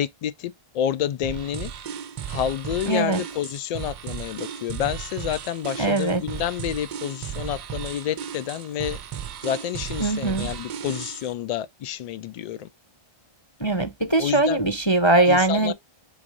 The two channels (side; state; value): right; late; 1.3 ms